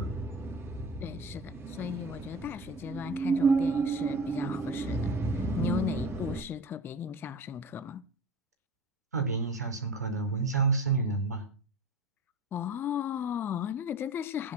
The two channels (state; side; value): normal; both; correlation 0.34